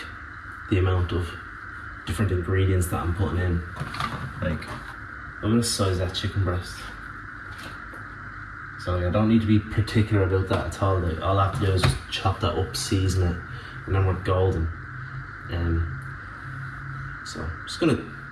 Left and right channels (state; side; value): identical; both; correlation 1.00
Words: the amount of different ingredients that I'm putting in. Like, I'm gonna size that chicken breast. So like, I don't need to be particular about that at all. Like, all I have to do is just chop that up, season it, and then we're golden. So I'm just gonna